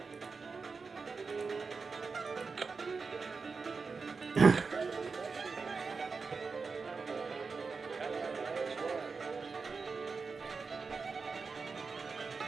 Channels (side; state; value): left; quieter; 4.7 dB